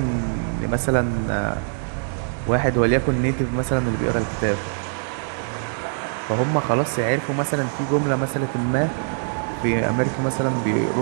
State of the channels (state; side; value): silent; left; digital silence